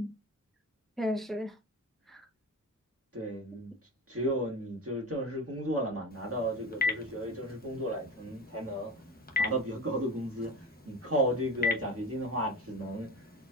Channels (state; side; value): normal; both; correlation 0.29